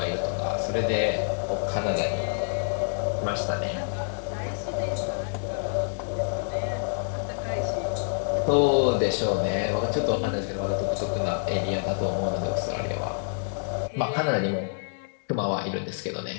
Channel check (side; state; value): right; silent; digital silence